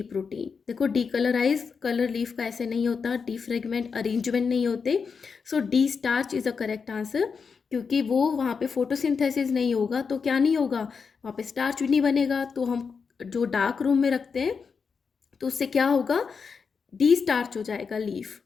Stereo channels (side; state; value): right; quieter; 5.6 dB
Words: प्रोटीन। देखो डी कलराइज कलर लीफ का ऐसे नहीं होता, डी फ्रेगमेंट अरेंजमेंट नहीं होते। So the starch is a correct answer, क्योंकि वो वहाँ पे फोटोसिंथेसिस नहीं होगा तो क्या नहीं होगा, वहाँ पे स्टार्च भी नहीं बनेगा। तो हम जो डार्क रूम में रखते हैं तो उससे क्या होगा, डी स्टार्च हो जाएगा लीफ